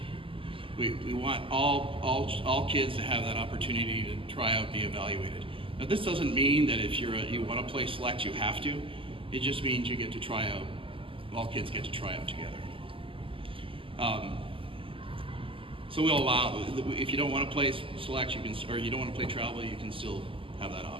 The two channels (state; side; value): late; left; 0.25 ms